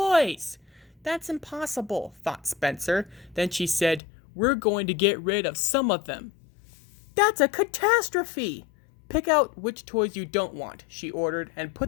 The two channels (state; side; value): drops out; right; at 4.0 s